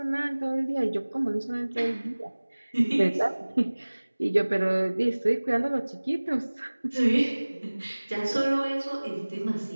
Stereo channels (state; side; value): inverted; both; correlation -1.00